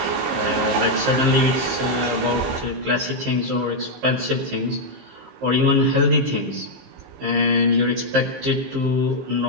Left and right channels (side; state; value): left; late; 15 ms